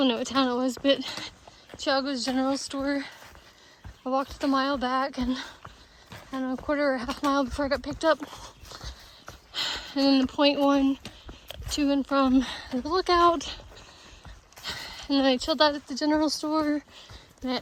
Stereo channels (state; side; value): identical; both; correlation 1.00